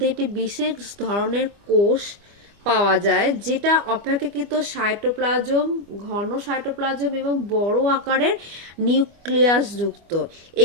একটি বিশেষ ধরনের কোষ পাওয়া যায় যেটা অপেক্ষাকৃত সাইটোপ্লাজম, ঘন সাইটোপ্লাজম এবং বড় আকারের নিউক্লিয়াস যুক্ত।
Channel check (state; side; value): late; left; 25 ms